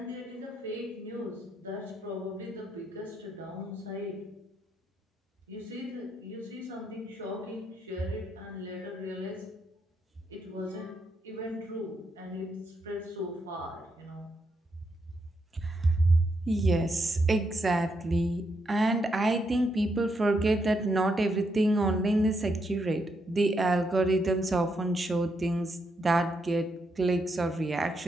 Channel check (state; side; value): normal; both; correlation 0.79